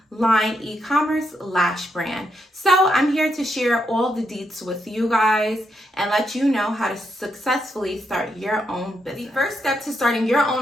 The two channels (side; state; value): both; normal; correlation 0.80